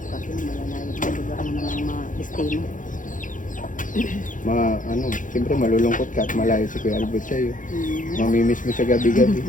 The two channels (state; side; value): late; right; 0.38 ms